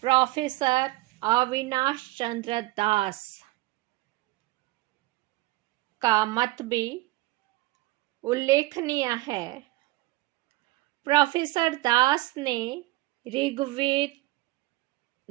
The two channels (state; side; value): quieter; left; 19.5 dB